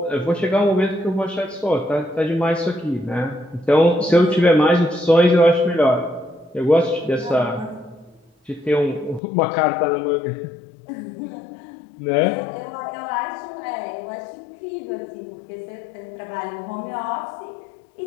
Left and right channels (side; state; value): right; drops out; at 9.2 s